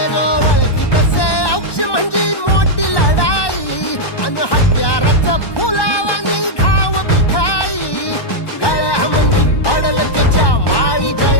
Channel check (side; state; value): right; late; 1.2 ms